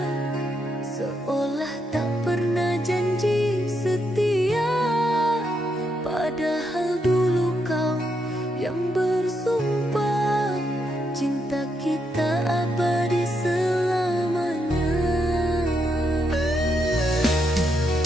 seolah tak pernah janji setia. Padahal dulu kau yang bersumpah cinta kita abadi selamanya.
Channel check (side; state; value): both; normal; correlation 0.80